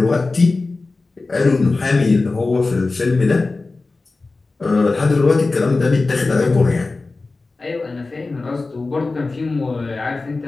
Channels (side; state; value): right; quieter; 3.6 dB